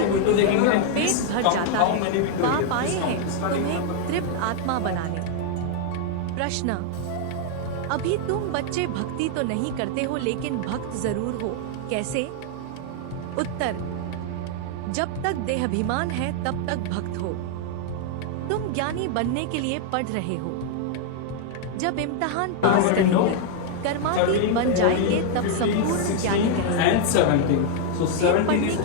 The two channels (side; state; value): both; different; correlation 0.00